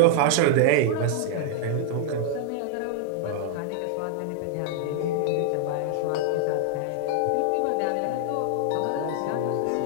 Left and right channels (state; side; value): different; both; correlation -0.01